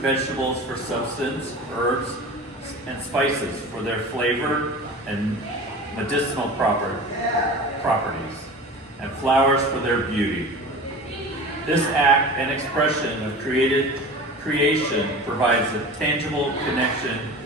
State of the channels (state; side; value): normal; both; correlation 0.35